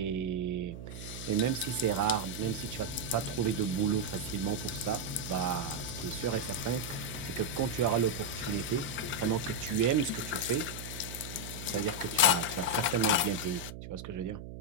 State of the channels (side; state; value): right; noise; hum, 11 dB below the sound